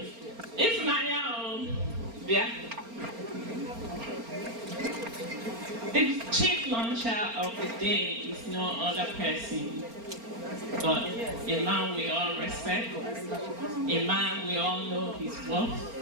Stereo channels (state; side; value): late; left; 4.4 ms